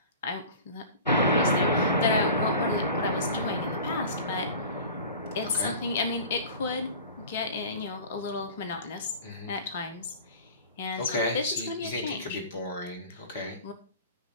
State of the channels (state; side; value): inverted; both; correlation -0.39